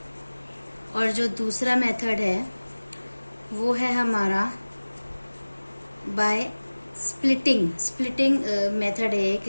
और जो दूसरा मेथड है वो है हमारा बाय स्प्लिटिंग मेथड है एक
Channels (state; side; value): inverted; both; correlation -1.00